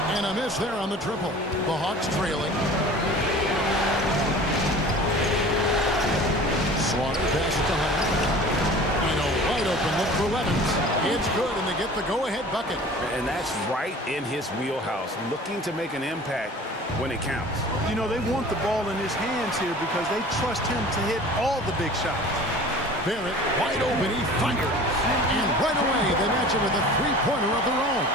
And a miss there on the triple. The Hawks trailing. Slaughter passes to Hunter. And a wide open look for Levens. It's good, and they get the go-ahead bucket. And that's right in his wheelhouse, looking to make an impact when it counts. You know, they want the ball in his hands here because they trust him to hit all the big shots. Barrett, wide open, he fires. And right away, they match him with a three-pointer of their own.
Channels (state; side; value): normal; both; correlation 0.43